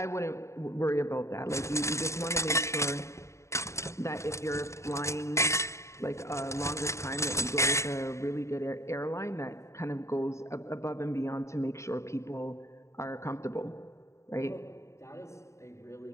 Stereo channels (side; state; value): right; late; 0.14 ms